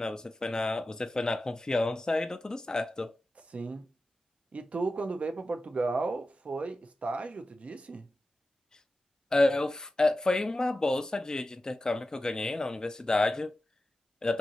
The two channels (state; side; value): normal; both; correlation 0.93